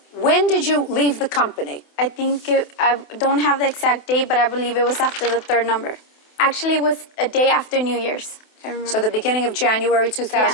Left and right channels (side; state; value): right; late; 28 ms